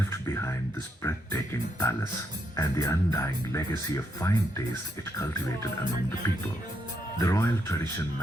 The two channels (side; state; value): both; normal; correlation 0.78